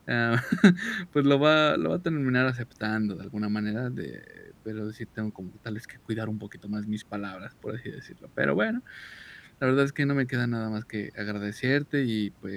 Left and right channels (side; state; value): both; identical; correlation 1.00